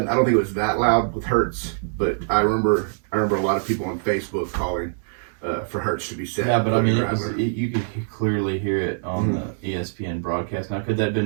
I don't think it was that loud with Hurts, but I remember a lot of people on Facebook calling for Hurts to be set. Yeah, but I mean, you could clearly hear it on the ESPN broadcast. Now, could that have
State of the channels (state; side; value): silent; left; digital silence